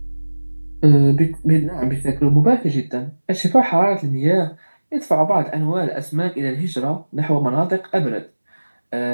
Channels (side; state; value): both; inverted; correlation -1.00